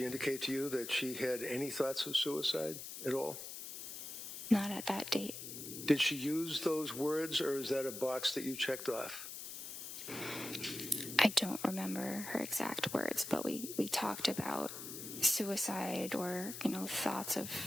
indicate to you that she had any thoughts of suicide at all? Not at that date. Did she use those words, or is that a box that you checked off? I don't remember her exact words, but we talked about suicide or, thoughts of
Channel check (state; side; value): noise; left; hiss, 8 dB below the sound